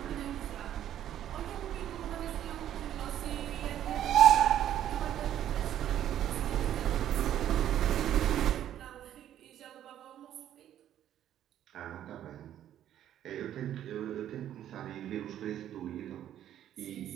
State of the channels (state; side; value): quieter; left; 11.2 dB